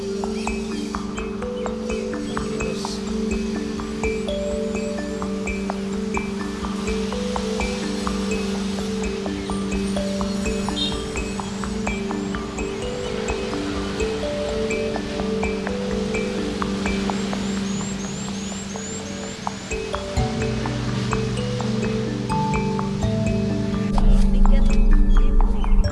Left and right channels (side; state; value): both; identical; correlation 1.00